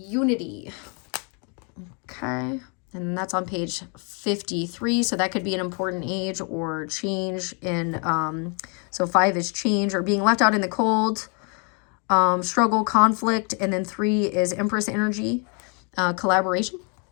Okay. And that's on page 53. So that could be an important age or change in, so 5 is change or being left out in the cold, struggle, conflict. And then 3 is Empress energy, collaboration.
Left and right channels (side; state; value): right; quieter; 36.5 dB